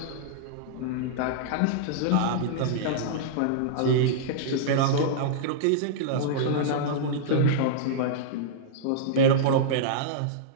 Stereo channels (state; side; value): different; both; correlation -0.02